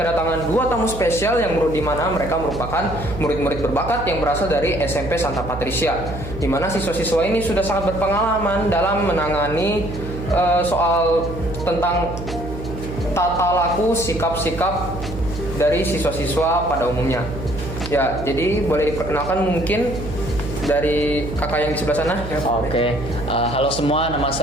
dua tamu spesial yang di mana mereka merupakan murid-murid berbakat yang berasal dari SMP Santa Patricia, di mana siswa-siswa ini sudah sangat berpengalaman dalam menangani soal tentang tata laku sikap-sikap dari siswa-siswa pada umumnya. Ya, jadi boleh diperkenalkan mungkin dari kakak yang di sebelah sana. Ya, Oke. Halo semua, nama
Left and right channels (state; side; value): noise; right; hum, 9 dB below the sound